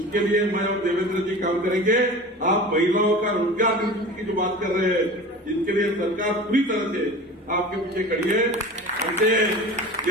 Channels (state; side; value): normal; both; correlation 0.35